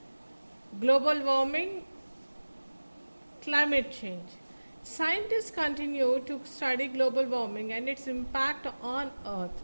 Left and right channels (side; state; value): both; inverted; correlation -1.00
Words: global warming, climate change. Scientists continue to study global warming and its impact on Earth.